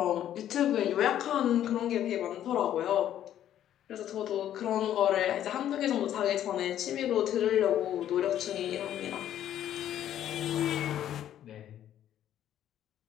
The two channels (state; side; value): quieter; right; 11.2 dB